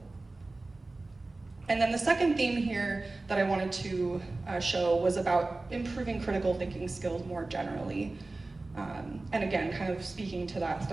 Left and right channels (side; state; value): left; quieter; 3.2 dB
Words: And then the second theme here that I wanted to show was about improving critical thinking skills more generally. And again, kind of speaking to that